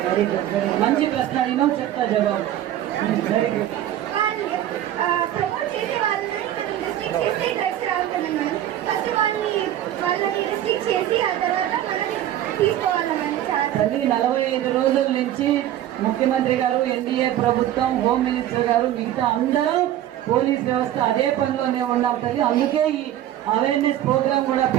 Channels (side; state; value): left; quieter; 12.3 dB